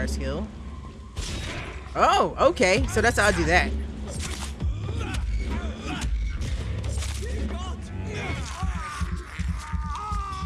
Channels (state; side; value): identical; both; correlation 1.00